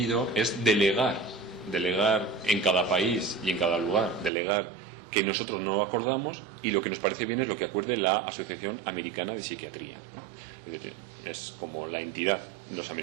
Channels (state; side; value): drops out; left; at 4.3 s